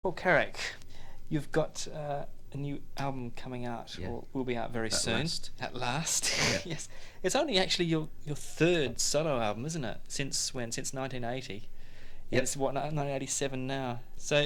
Paul Carrack, you've got a new album coming out, Yeah. or will be out very soon. Last. At last. Yeah. Yes. It's only actually your third solo album, isn't it? Since when? Since 1980. Yep. It's what, 1987 now.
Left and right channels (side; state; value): both; identical; correlation 1.00